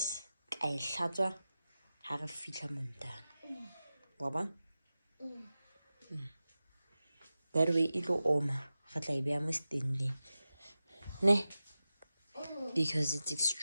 I shatter, have a fitla montana. Waba? That way it'll oma. But like be almost standing. Ne? Because it's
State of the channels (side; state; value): both; inverted; correlation -0.94